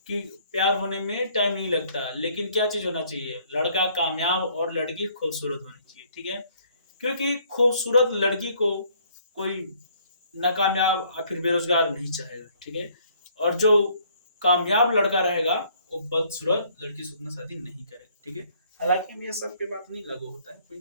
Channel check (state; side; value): inverted; both; correlation -0.62